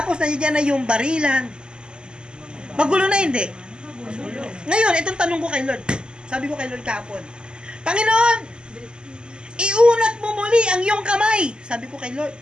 nandiyan na yung barilan. Magulo na, hindi? Ngayon, itong tanong ko kay Lord. Sabi ko kay Lord kahapon, Panginoon, iunat mo muli ang iyong kamay. Sabi ko kay Lord,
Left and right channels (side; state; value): left; late; 0.048 ms